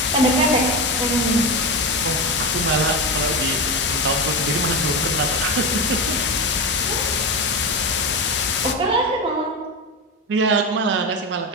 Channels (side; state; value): both; normal; correlation 0.17